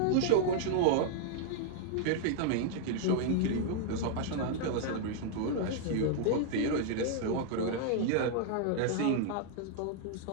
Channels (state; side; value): different; both; correlation 0.00